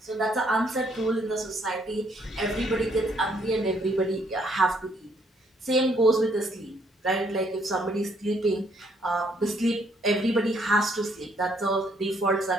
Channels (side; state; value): both; normal; correlation 0.68